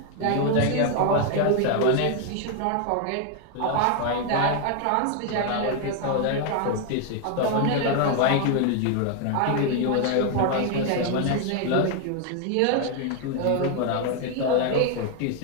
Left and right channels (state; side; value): different; both; correlation 0.00